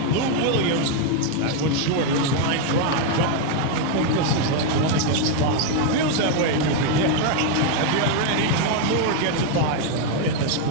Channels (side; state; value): both; different; correlation 0.01